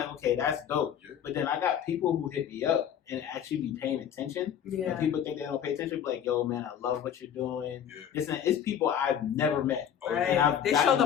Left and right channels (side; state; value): right; quieter; 9.0 dB